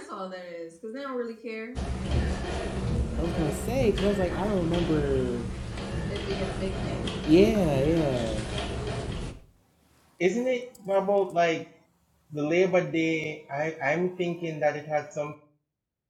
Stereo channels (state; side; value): identical; both; correlation 1.00